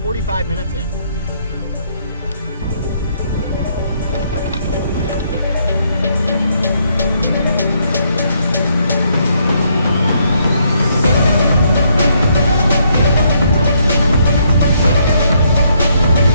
45 minutes in.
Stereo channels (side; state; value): both; inverted; correlation -0.72